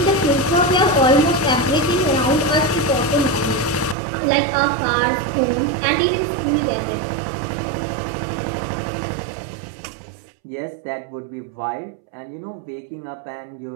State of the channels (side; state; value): left; drops out; at 4.0 s